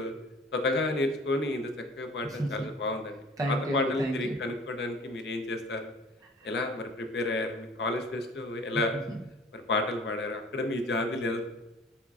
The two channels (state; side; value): normal; both; correlation 0.48